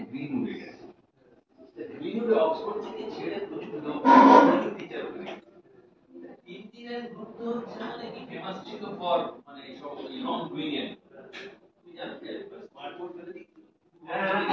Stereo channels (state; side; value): identical; both; correlation 1.00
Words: গ্রিনউডে গেছে। গ্রিনউডে অক্সফোর্ড থেকে ছেড়ে প্রচুর লোক টিচার হয়ে গেছে। ইঞ্জিনিয়ারিং গ্রুপ তো হচ্ছে মানে কি ফেমাস ছিল ফর মানে সব নন ব্রিলিয়েন্ট। তুমি জানো স্মার্ট বোর্ড